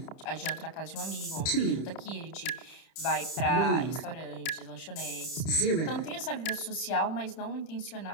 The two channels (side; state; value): right; late; 30 ms